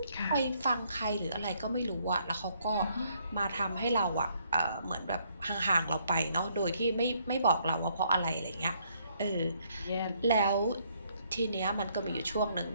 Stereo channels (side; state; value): both; inverted; correlation -0.69